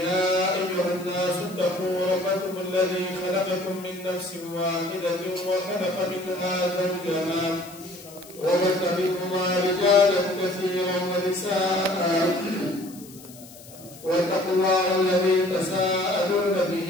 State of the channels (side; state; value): left; noise; hiss, 20 dB below the sound